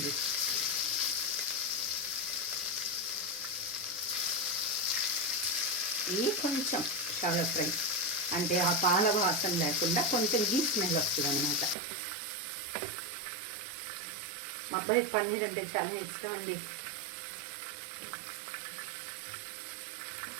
ఇది కొంచెం షాలో ఫ్రై అంటే ఆ పాల వాసన లేకుండా కొంచెం గీ స్మెల్ వస్తుంది అనమాట. మా అబ్బాయి పన్నీర్ అంటే చాలా ఇష్టం అండి.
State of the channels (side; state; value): left; drops out; at 11.8 s